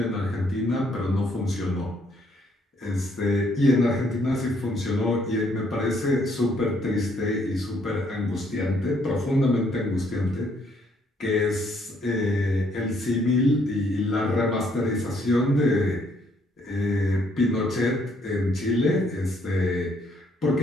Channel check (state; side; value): normal; both; correlation 0.68